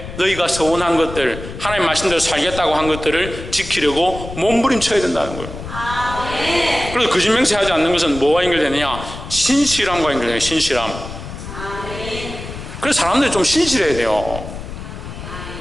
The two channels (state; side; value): noise; left; rumble, 10 dB below the sound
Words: 너희가 서원한 것들, 하나님 말씀대로 살겠다고 한 것들을 지키려고 몸부림쳐야 된다는 거예요. 그래서 거짓 맹세하지 않는 것은 뭐와 연결되느냐? 신실함과 연결돼요. 신실함. 그래서 사람들이 좀 신실해야 돼요.